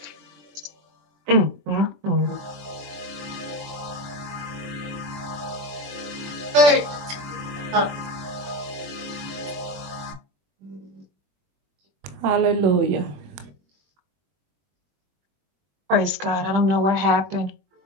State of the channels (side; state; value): left; late; 21 ms